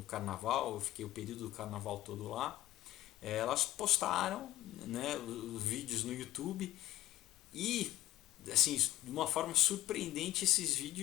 carnaval, eu fiquei o período do carnaval todo lá, elas postaram, né, os vídeos no YouTube e assim, de uma forma surpreendente esses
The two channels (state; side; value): quieter; right; 15.4 dB